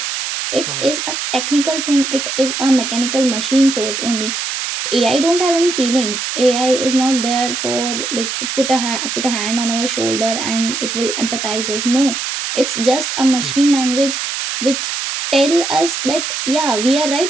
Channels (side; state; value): right; noise; hiss, 3 dB below the sound